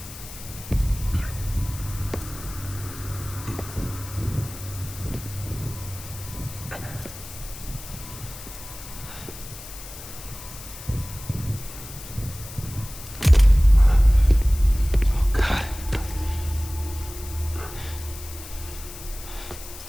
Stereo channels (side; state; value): left; noise; hiss, 14 dB below the sound